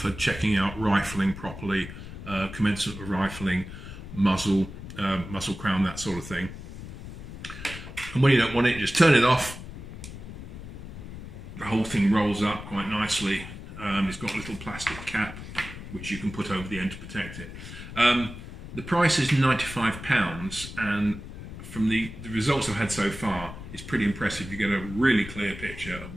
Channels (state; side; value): noise; left; rumble, 12 dB below the sound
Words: checking out rifling properly, commencement of rifling, muzzle crown, that sort of thing. And when you don't want it, you just turn it off. The whole thing rolls up quite nicely. It's got a little plastic cap which you can put over the end to protect it. The price is £95, and from the results I've had so far, it's pretty impressive. You get a really clear picture of